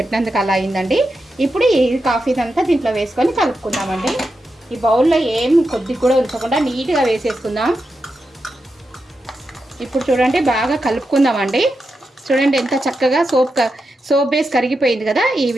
అలా అయిందండి. ఇప్పుడు ఈ కాఫీ అంతా దీంట్లో వేసుకొని కలుపుకుందామండి. ఈ బౌల్లో ఏం కొద్దిగా కూడా ఉంచకుండా నీట్గా వేసేసుకుందాం. ఇప్పుడు చూడండి బాగా కలుపుకుందామండి. చూడండి ఎంత చక్కగా సోప్ బేస్ కరిగిపోయింది కదా, ఈ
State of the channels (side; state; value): both; normal; correlation 0.88